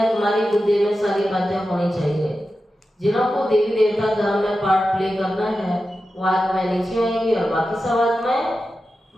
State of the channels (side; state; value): both; normal; correlation 0.92